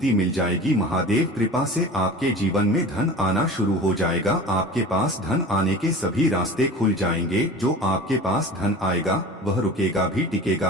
मिल जाएगी। महादेव कृपा से आपके जीवन में धन आना शुरू हो जाएगा, आपके पास धन आने के सभी रास्ते खुल जाएंगे। जो आपके पास धन आएगा वह रुकेगा भी,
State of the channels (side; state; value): both; normal; correlation 0.37